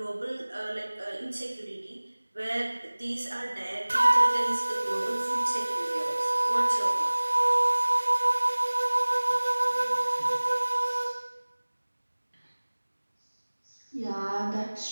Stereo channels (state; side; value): inverted; both; correlation -1.00